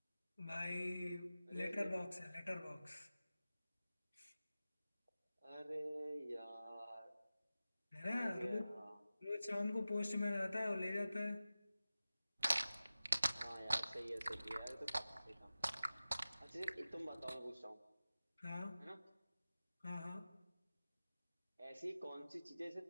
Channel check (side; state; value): both; inverted; correlation -0.95